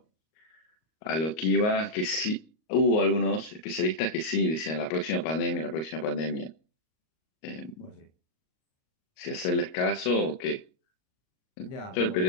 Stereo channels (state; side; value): late; right; 38 ms